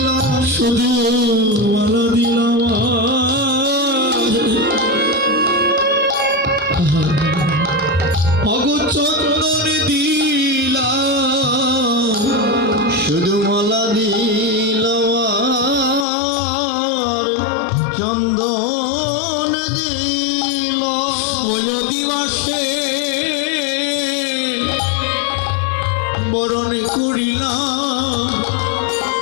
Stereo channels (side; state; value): right; drops out; at 16.1 s